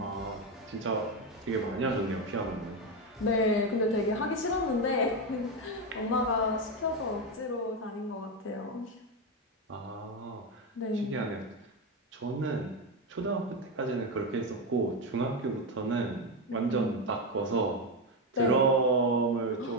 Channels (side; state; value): both; normal; correlation 0.11